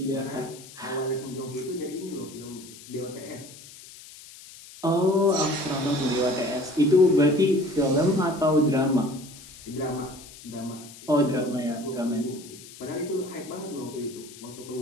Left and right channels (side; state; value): left; noise; hiss, 18 dB below the sound